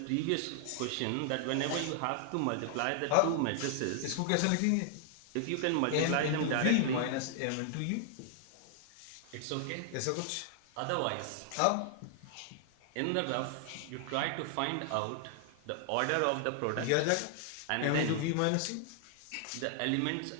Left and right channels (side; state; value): both; different; correlation 0.00